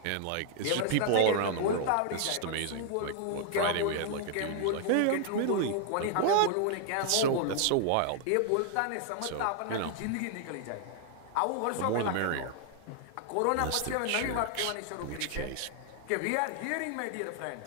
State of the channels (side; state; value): both; different; correlation 0.00